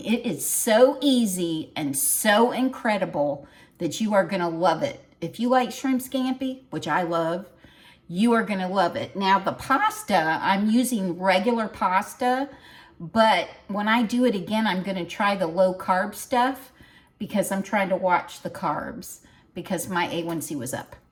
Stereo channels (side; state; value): both; identical; correlation 1.00